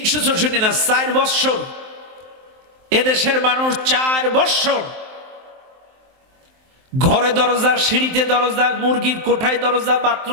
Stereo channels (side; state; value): left; late; 23 ms